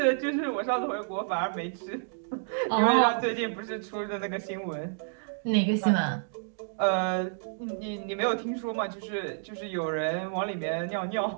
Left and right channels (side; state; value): left; silent; digital silence